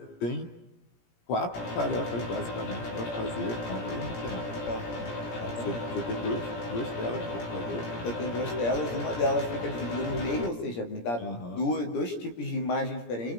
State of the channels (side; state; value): right; late; 17 ms